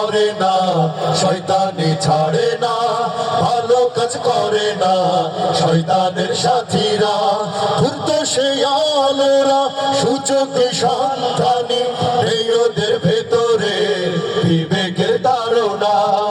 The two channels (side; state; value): both; identical; correlation 1.00